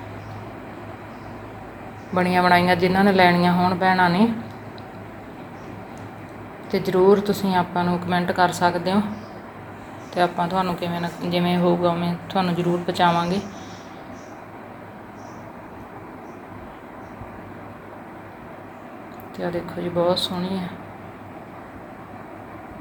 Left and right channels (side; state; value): both; identical; correlation 1.00